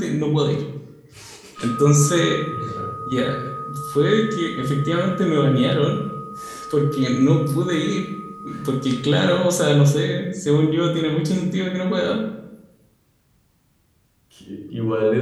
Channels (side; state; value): both; identical; correlation 1.00